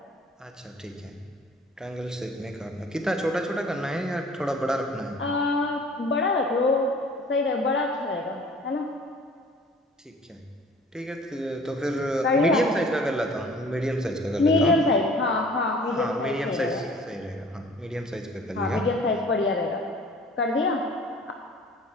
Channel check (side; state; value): both; normal; correlation 0.49